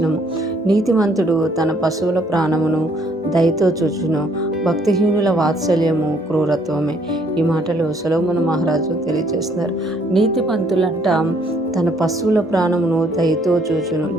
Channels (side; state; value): both; normal; correlation 0.65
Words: నీతిమంతుడు తన పశువుల ప్రాణమును దయతో చూచును, భక్తిహీనుల వాత్సల్యము క్రూరత్వమే. ఈ మాటలు సొలొమోను మహారాజు తెలియజేస్తున్నారు. నీతిమంతులంట తన పశువుల ప్రాణమును దయతో చూచును.